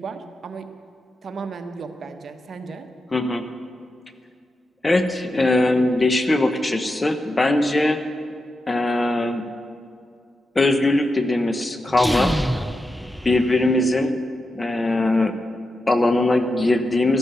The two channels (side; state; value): both; normal; correlation 0.88